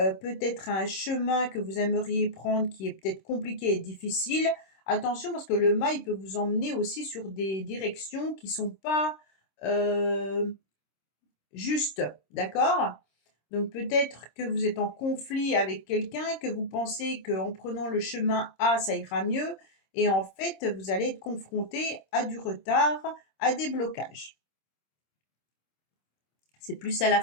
à un chemin que vous aimeriez prendre qui est peut-être compliqué et difficile. Attention parce que le mât, il peut vous emmener aussi sur des directions qui ne sont pas justes. D'accord? Donc peut-être que vous êtes en conflit avec quelqu'un, que vous pensez qu'en prenant le chemin A, ça ira mieux. Et en fait, vous allez être confronté à du retard, à des blocages. C'est plus à la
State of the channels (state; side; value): late; right; 26 ms